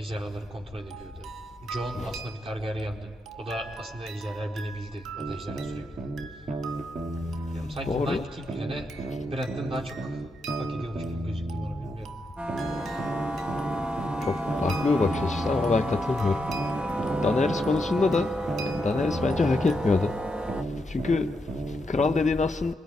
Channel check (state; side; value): normal; both; correlation 0.82